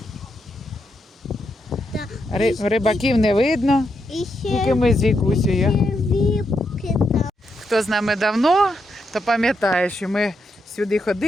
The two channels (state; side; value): normal; both; correlation 0.82